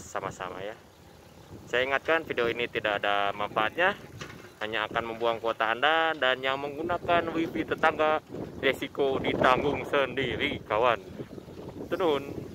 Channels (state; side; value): identical; both; correlation 1.00